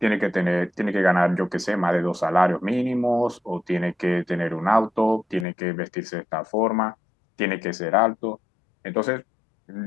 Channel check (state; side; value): drops out; right; at 5.5 s